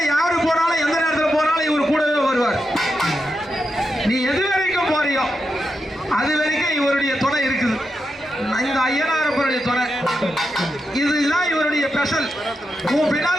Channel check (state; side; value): normal; both; correlation 0.86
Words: யாரு போனாலும் எந்த நேரத்தில் போனாலும் இவர் கூடவே வருவார். நீ எது வரைக்கும் போறியோ அது வரைக்கும் இவருடைய துணை இருக்குது. இந்த ஐயனாரப்பனுடைய துணை இதுதான் இவருடைய ஸ்பெஷல். உன்